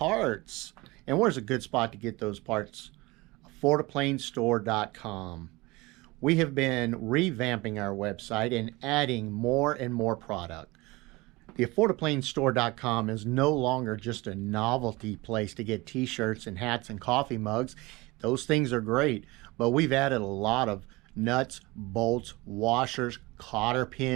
And where's a good spot to get those parts? AffordAPlaneStore.com. We have been revamping our website and adding more and more product. The AffordAPlaneStore.com is no longer just a novelty place to get t-shirts and hats and coffee mugs. Those things are great, but we've added a lot of nuts, bolts, washers, cotter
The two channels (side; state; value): left; quieter; 22.6 dB